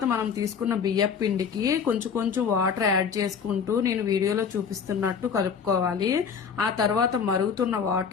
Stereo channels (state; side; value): quieter; right; 6.5 dB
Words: మనం తీసుకున్న బియ్యం పిండికి కొంచెం కొంచెం వాటర్ యాడ్ చేసుకుంటూ నేను వీడియోలో చూపిస్తున్నట్టు కలుపుకోవాలి. ఆ తర్వాత మరుగుతున్న